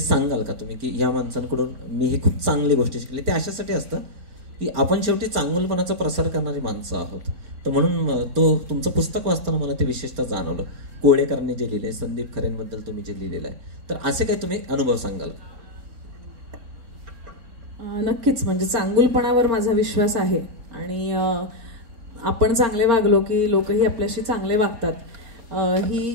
का तुम्ही, की या माणसांकडून मी ही खूप चांगली गोष्टी शिकली. ते अशासाठी असतं की आपण शेवटी चांगुलपणाचा प्रसार करणारी माणसं आहोत. तर म्हणून तुमचं पुस्तक वाचताना मला ते विशेषतः जाणवलं. कोळेकरांनी जे लिहिले, संदीप खरेंबद्दल तुम्ही जे लिहिलेलं आहे, तर असे काही तुम्ही अनुभव सांगाल? नक्कीच, म्हणजे चांगुलपणावर माझा विश्वास आहे, आणि आपण चांगले वागलो की लोकही आपल्याशी चांगले वागतात. ही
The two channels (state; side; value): late; left; 4.3 ms